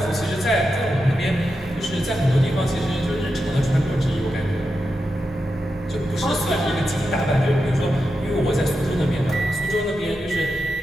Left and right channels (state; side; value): normal; both; correlation 0.88